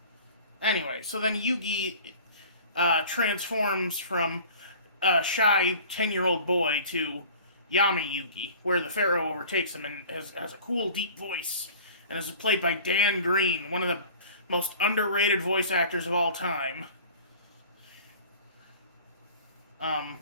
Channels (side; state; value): both; inverted; correlation -0.44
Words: Anyway, so then Yugi transforms from a shy 10-year-old boy to Yami Yugi, where the Pharaoh overtakes him and has a cool, deep voice, and is played by Dan Green, one of the most underrated voice actors of all time. Um,